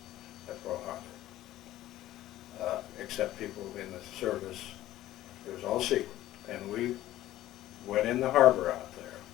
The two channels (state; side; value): quieter; right; 14.6 dB